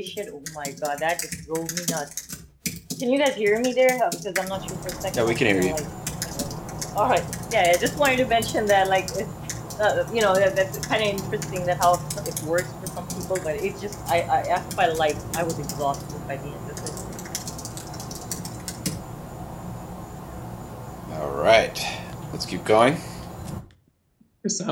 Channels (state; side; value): identical; both; correlation 1.00